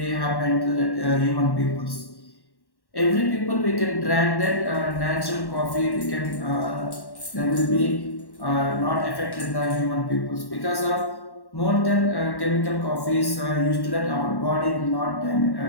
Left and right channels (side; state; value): right; late; 1.1 ms